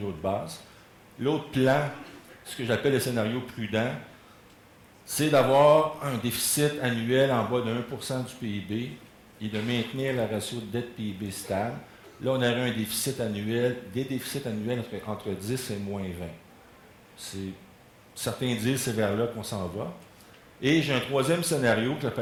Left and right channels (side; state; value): both; identical; correlation 1.00